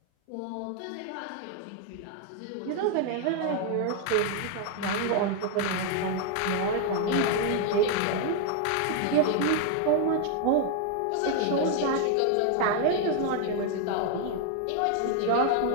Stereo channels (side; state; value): both; different; correlation 0.00